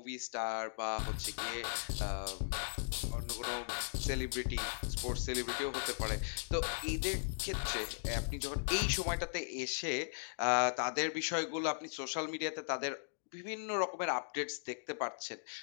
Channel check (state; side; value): silent; right; digital silence